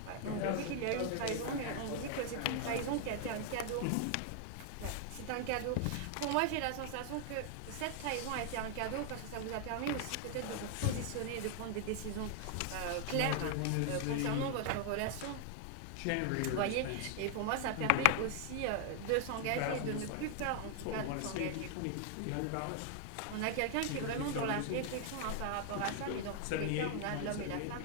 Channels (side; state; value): both; different; correlation 0.00